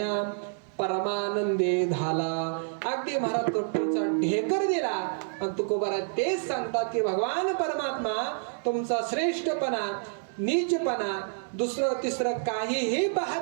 परमानंदे झाला. अगदी महाराज तृप्तीचा ढेकर दिला. आणि तुकोबारा तेच सांगतात की भगवान परमात्मा तुमचा श्रेष्ठपणा, नीचपणा, दुसरं तिसरं काहीही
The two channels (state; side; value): silent; left; digital silence